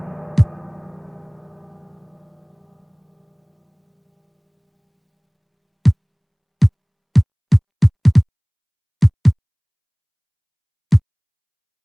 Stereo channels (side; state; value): both; identical; correlation 1.00